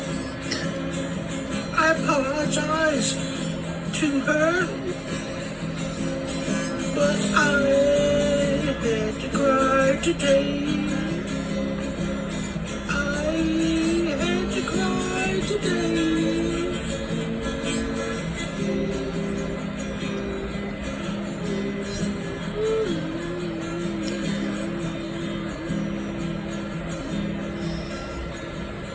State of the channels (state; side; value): identical; both; correlation 1.00